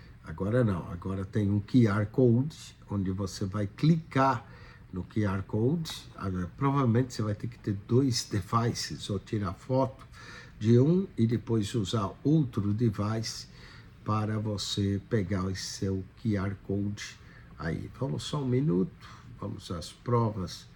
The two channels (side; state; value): both; identical; correlation 1.00